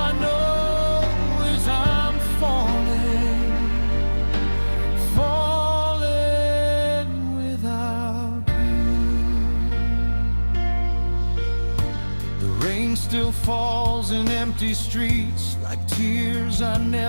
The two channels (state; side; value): inverted; both; correlation -1.00